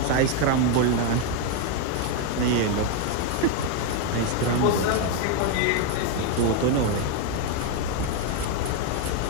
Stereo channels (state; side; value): different; both; correlation 0.01